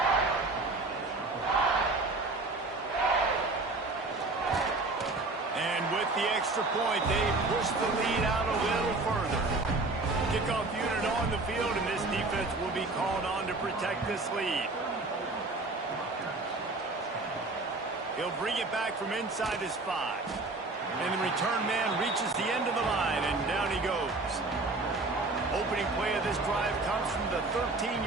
And with the extra point, they push the lead out a little further. Kickoff unit on the field, and this defense will be called on to protect this lead. He'll bring it back from inside his 5. And the return man reaches the end of the line, and down he goes. Opening play of this drive comes from the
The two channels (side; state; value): left; quieter; 3.3 dB